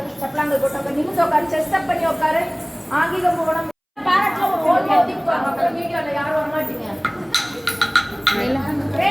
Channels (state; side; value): identical; both; correlation 1.00